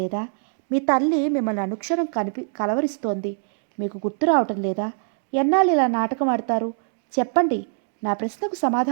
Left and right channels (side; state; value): left; silent; digital silence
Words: మీ తల్లి మిమ్మల్ని అనుక్షణం కలవరిస్తోంది. మీకు గుర్తు రావటం లేదా? ఎన్నాళ్ళు ఇలా నాటకం ఆడతారు? చెప్పండి, నా ప్రశ్నకు